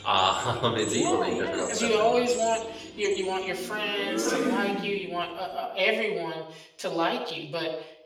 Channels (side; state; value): both; identical; correlation 1.00